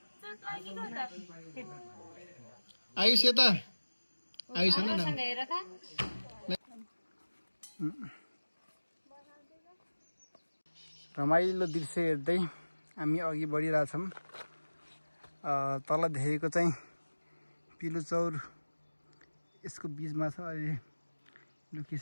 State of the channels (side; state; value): both; inverted; correlation -1.00